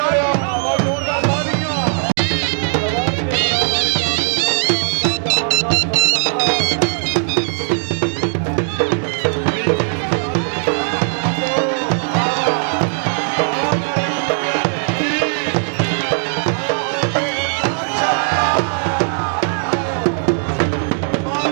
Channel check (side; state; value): left; silent; digital silence